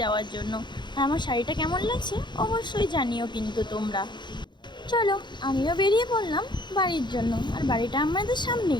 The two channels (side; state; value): right; late; 0.22 ms